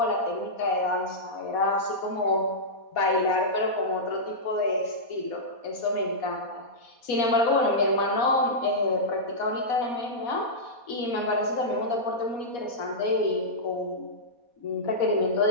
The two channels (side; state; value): right; late; 4.2 ms